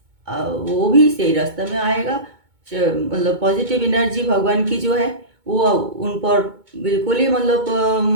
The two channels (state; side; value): late; left; 2.2 ms